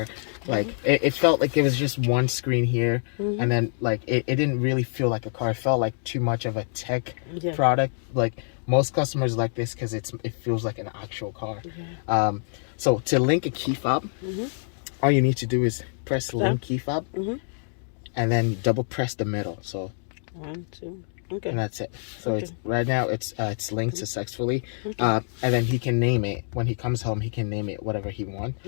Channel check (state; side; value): silent; right; digital silence